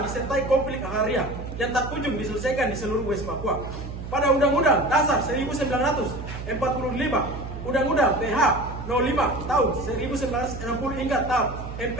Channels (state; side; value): noise; right; hum, 9 dB below the sound